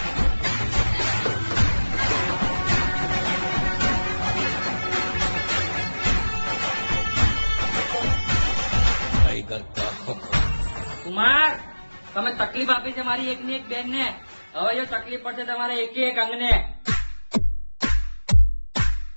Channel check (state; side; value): inverted; both; correlation -1.00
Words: કુમાર, તમે તકલીફ આપી છે મારી એકની એક બેન ને. હવે જો તકલીફ પડશે તમારે એક એક અંગને.